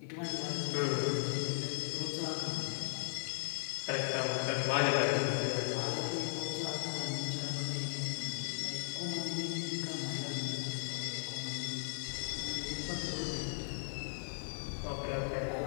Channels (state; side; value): silent; right; 53 dB below the other